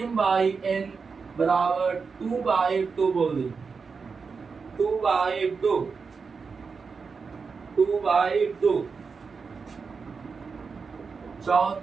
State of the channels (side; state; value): left; quieter; 5.1 dB